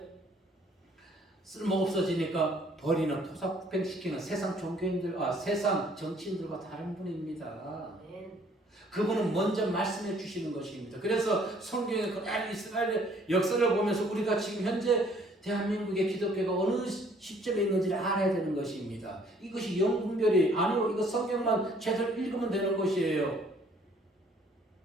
쓸모없어지니까 버리는 토사구팽시키는 세상 종교인들, 세상 정치인들과 다른 분입니다. 아멘. 그분은 먼저 말씀해 주시는 것입니다. 그래서 성경의 그날 이스라엘의 역사를 보면서 우리가 지금 현재 대한민국의 기독교가 어느 시점에 있는지를 알아야 되는 것입니다. 이것이 영분별이 아니고 이거 성경만 제대로 읽으면 되는 것이에요.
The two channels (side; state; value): both; normal; correlation 0.60